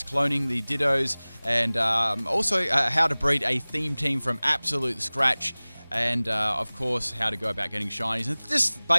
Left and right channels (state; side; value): inverted; both; correlation -1.00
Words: cloning the dittos, and also how to breed a theme team from absolute scratch, and of course how to go about getting shinies and just